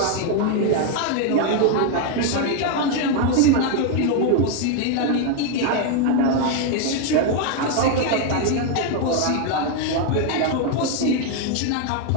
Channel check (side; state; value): both; different; correlation 0.01